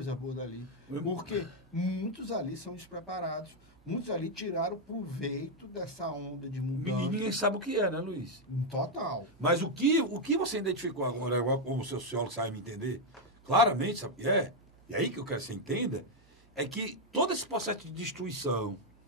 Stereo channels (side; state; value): both; normal; correlation 0.01